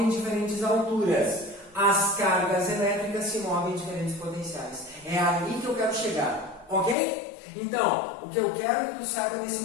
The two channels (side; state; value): right; drops out; at 7.0 s